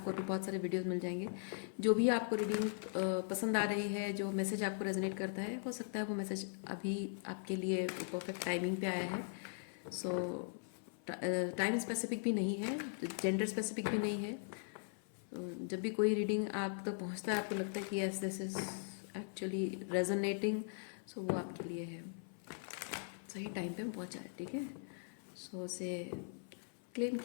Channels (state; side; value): silent; right; 51 dB below the other